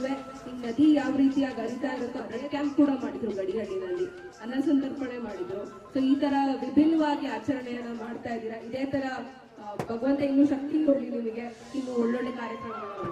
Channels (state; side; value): identical; both; correlation 1.00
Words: ಈ ನದಿ ಯಾವ ರೀತಿಯಾಗಿ ಹರಿತಾ ಇರುತ್ತೋ ಬ್ಲಡ್ ಕ್ಯಾಂಪ್ ಕೂಡ ಮಾಡಿದ್ರು, ಗಡಿಗಡಿನಲ್ಲಿ ಅನ್ನ ಸಂತರ್ಪಣೆ ಮಾಡಿದ್ರು. ಸೊ ಈ ತರ ವಿಭಿನ್ನವಾಗಿ ಆಚರಣೆಯನ್ನ ಮಾಡ್ತಾ ಇದ್ದೀರಾ. ಇದೇ ತರ ಭಗವಂತ ಇನ್ನೂ ಶಕ್ತಿ ಕೊಡ್ಲಿ ನಿಮಗೆ, ಇನ್ನು ಒಳ್ಳೊಳ್ಳೆ ಕಾರ್ಯಕ್ರಮಗಳು.